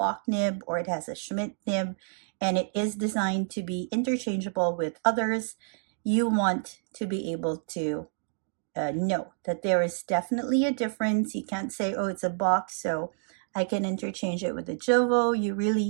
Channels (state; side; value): silent; left; digital silence